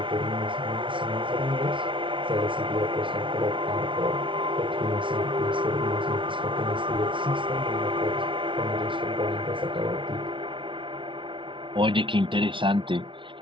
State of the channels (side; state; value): left; late; 0.25 ms